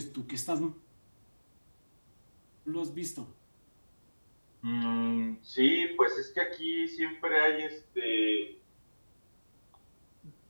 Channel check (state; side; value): inverted; both; correlation -1.00